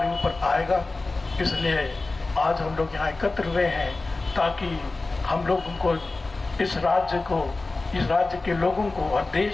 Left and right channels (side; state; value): right; quieter; 3.4 dB